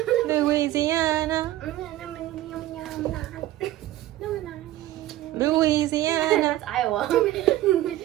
Louisiana. Louisiana. That's Iowa.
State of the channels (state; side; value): quieter; left; 14.9 dB